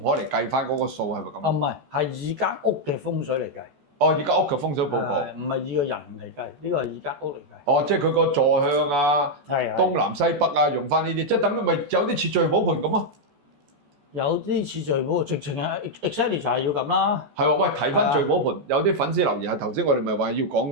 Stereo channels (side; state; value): left; late; 14 ms